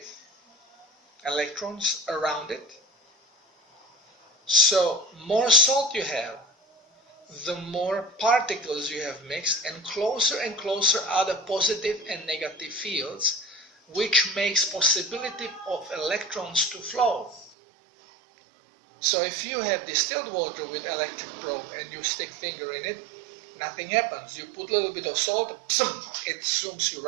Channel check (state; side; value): drops out; left; at 17.5 s